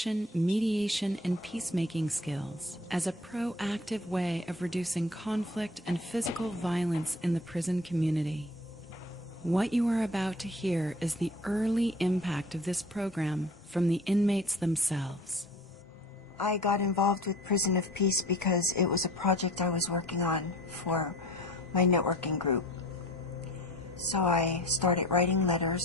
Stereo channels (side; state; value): both; normal; correlation 0.44